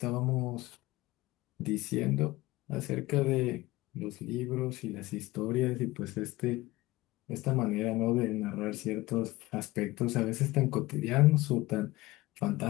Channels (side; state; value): right; quieter; 19.3 dB